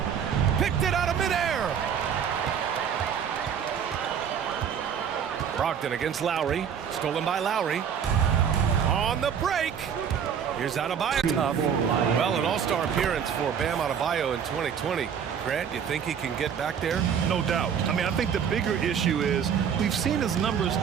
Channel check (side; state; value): left; quieter; 7.8 dB